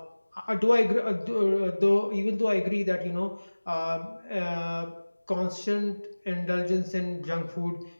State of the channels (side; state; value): both; inverted; correlation -1.00